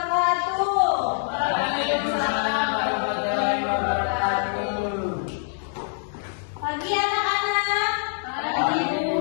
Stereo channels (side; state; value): right; silent; digital silence